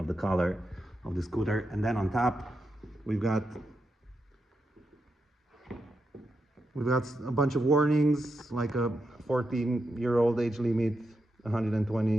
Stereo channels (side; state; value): both; normal; correlation 0.86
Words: the color of the scooter. And then on top, we've got a bunch of warnings, like a 14-year-old age limit,